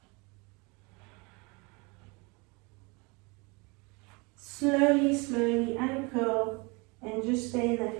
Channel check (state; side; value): quieter; left; 28.6 dB